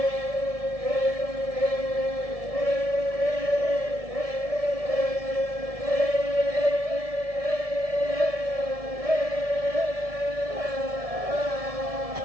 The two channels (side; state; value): left; late; 1.7 ms